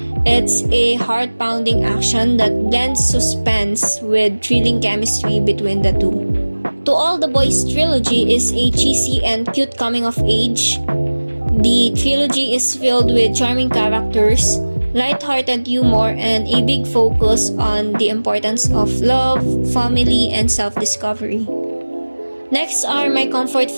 It's a heart-pounding action that blends suspense with thrilling chemistry between the two. To All the Boys trilogy is a cheesy and cute coming-of-age. The trilogy is filled with charming characters, light-hearted humor, and a big focus on the importance of love, family, and self-discovery. Next are my comfort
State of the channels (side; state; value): both; inverted; correlation -1.00